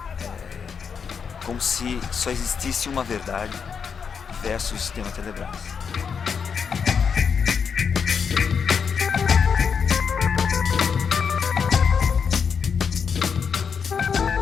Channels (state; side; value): quieter; right; 6.4 dB